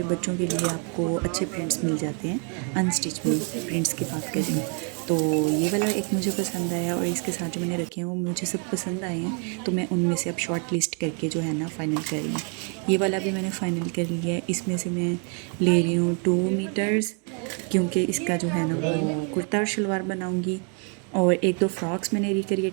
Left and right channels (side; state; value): left; quieter; 39.4 dB